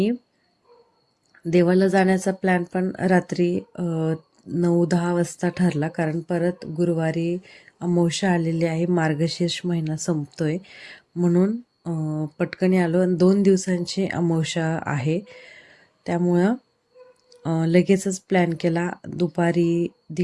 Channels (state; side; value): identical; both; correlation 1.00